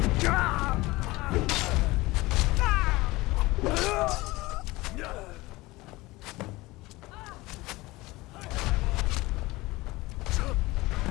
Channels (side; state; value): right; quieter; 20.7 dB